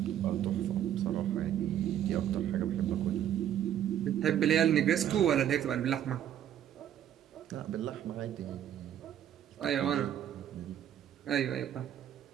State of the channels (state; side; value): quieter; left; 10.5 dB